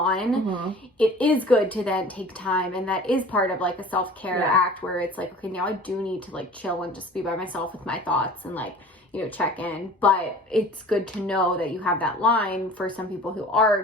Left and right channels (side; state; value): both; normal; correlation 0.44